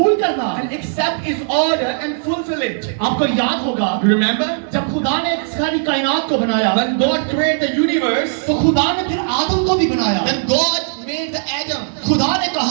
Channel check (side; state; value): left; silent; digital silence